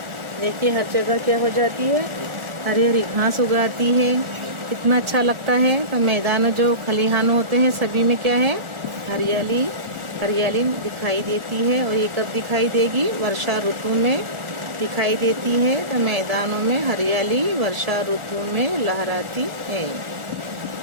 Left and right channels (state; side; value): late; left; 1.4 ms